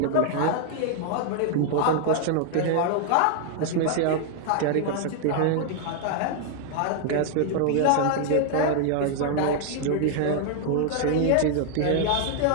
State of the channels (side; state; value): both; different; correlation 0.00